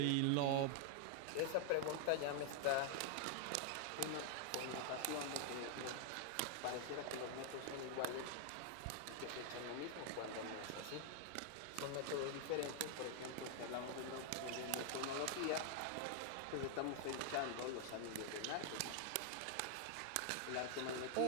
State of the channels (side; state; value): both; different; correlation -0.01